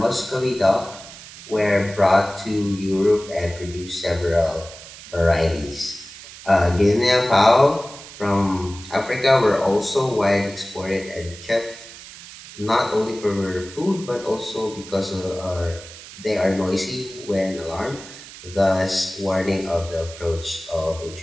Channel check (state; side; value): noise; right; hiss, 16 dB below the sound